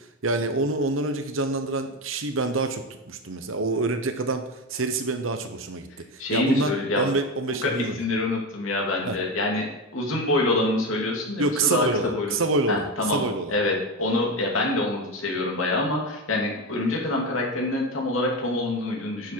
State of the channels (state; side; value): normal; both; correlation 0.17